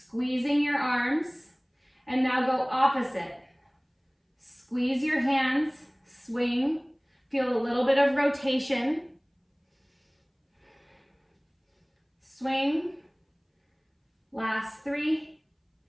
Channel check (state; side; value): identical; both; correlation 1.00